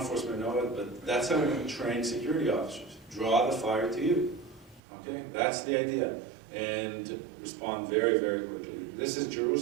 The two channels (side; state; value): left; drops out; at 4.8 s